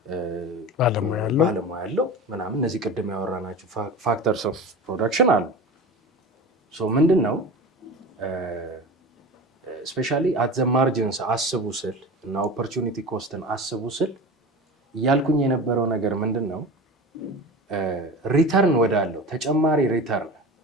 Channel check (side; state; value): both; normal; correlation 0.31